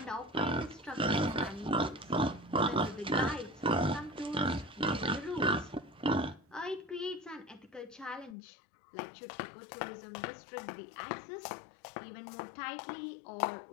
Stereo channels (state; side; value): drops out; right; at 8.3 s